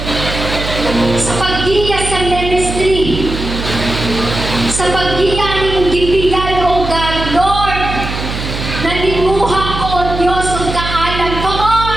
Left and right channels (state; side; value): noise; right; hum, 6 dB below the sound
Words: sa paggiya sa ministry, sa paggiya ni mong gibigay, O God, Lord, nanimuha ko, O Diyos, ang kaalam. Come